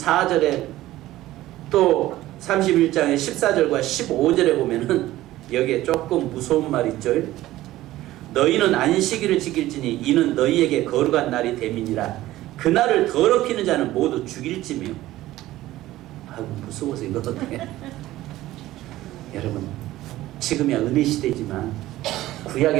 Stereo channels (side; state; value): left; quieter; 15.8 dB